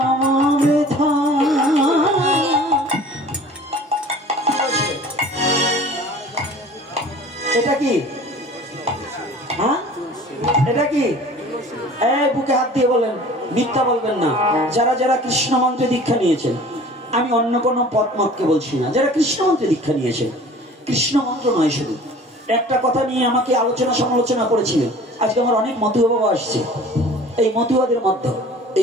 বৃথা। এটা কি? হ্যাঁ, এটা কি? এই বুকে হাত দিয়ে বলেন, মিথ্যা বলবেন না। যারা যারা কৃষ্ণ মন্ত্রে দীক্ষা নিয়েছেন, আমি অন্য কোনো পথ মতকে বলছি না, যারা কৃষ্ণ মন্ত্রে দীক্ষা নিয়েছেন, কৃষ্ণ মন্ত্র নয় শুধু, একটা কথা নিয়ে আমাকে আলোচনা সমালোচনা করেছিলেন। আজকে আমার অনেক মতুয়া বাবা আসছে, এই মতুয়াদের মধ্যে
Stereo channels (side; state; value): both; normal; correlation 0.45